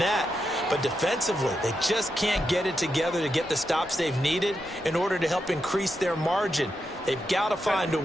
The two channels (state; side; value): normal; both; correlation 0.86